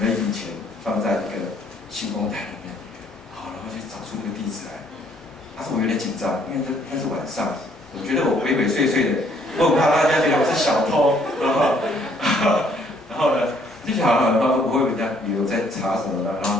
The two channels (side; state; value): both; normal; correlation 0.64